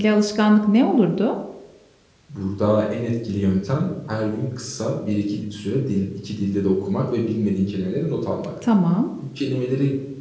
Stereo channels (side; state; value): both; identical; correlation 1.00